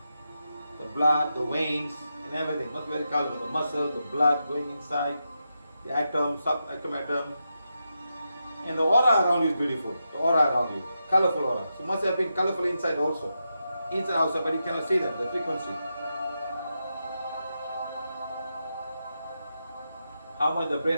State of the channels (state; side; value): inverted; both; correlation -0.87